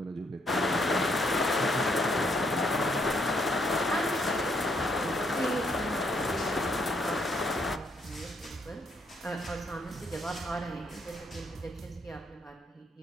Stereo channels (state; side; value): normal; both; correlation 0.72